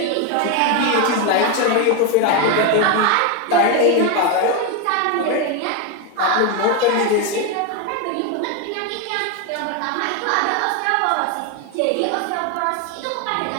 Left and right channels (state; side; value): different; both; correlation 0.02